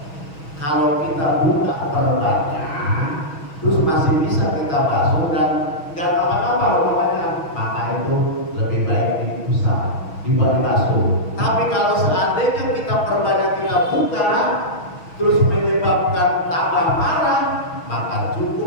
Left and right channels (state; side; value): late; right; 6.3 ms